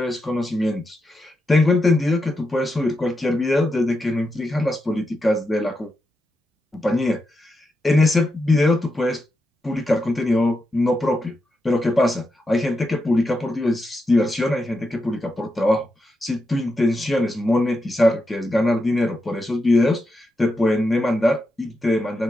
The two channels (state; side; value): normal; both; correlation 0.86